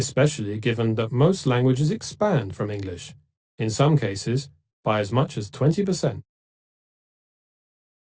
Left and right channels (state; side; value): identical; both; correlation 1.00